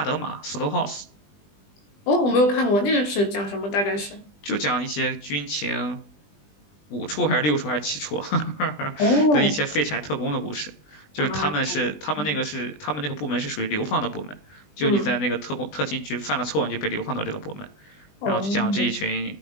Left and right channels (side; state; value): right; late; 20 ms